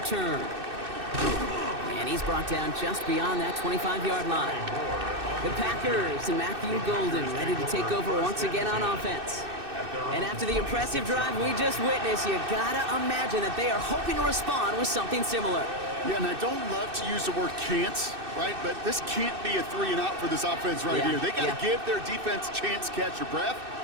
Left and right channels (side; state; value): left; late; 2.6 ms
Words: And he's brought down just beyond that 25-yard line. The Packers and Matthew Golden ready to take over once again on offense. And after the impressive drive we just witnessed, you gotta imagine that they are hoping to respond with something similar. Yeah, and I don't love to use the word can't, right? But this can't be a 3 and out for this offense right here. They got to give their defense a chance to catch your breath